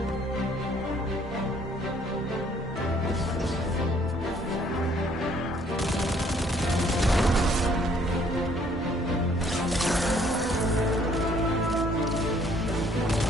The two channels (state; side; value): normal; both; correlation 0.62